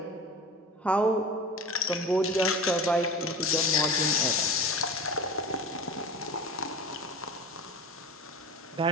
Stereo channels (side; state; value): both; normal; correlation 0.34